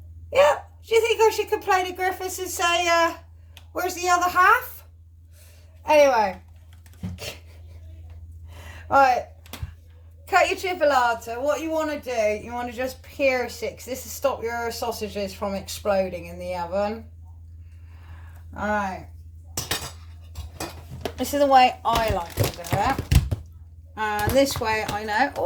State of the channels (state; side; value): identical; both; correlation 1.00